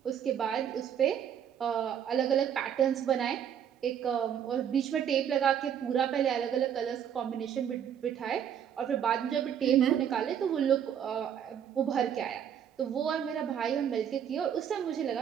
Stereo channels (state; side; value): quieter; left; 8.9 dB